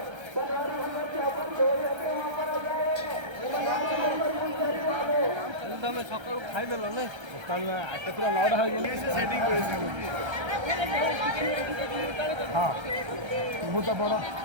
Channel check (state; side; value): late; left; 1.3 ms